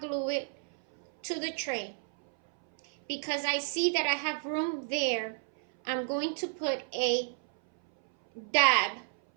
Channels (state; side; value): silent; left; 57 dB below the other